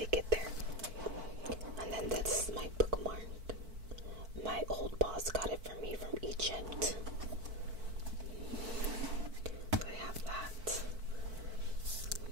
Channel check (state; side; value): late; left; 4.5 ms